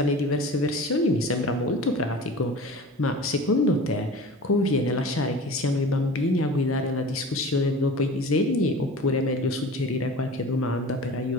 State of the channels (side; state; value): both; normal; correlation 0.38